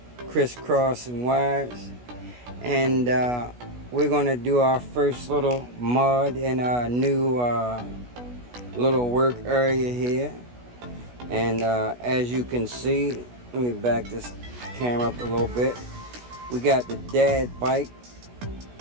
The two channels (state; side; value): late; left; 16 ms